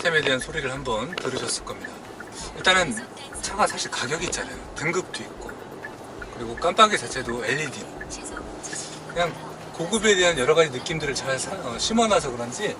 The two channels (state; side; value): identical; both; correlation 1.00